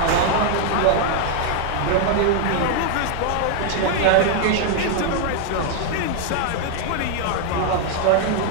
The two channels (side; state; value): both; different; correlation 0.00